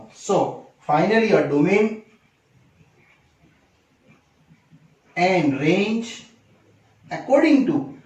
So finally your domain and range according to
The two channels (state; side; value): identical; both; correlation 1.00